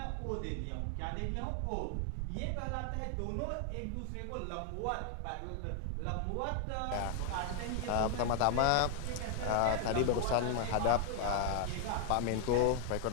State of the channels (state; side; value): different; both; correlation 0.00